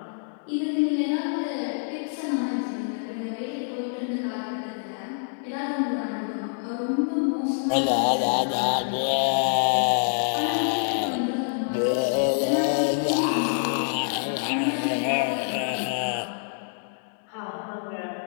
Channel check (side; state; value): right; silent; digital silence